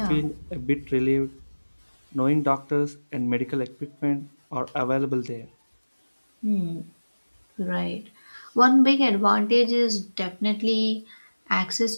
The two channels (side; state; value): both; inverted; correlation -1.00